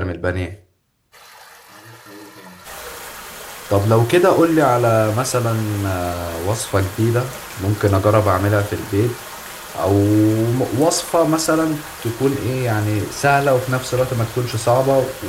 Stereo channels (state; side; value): identical; both; correlation 1.00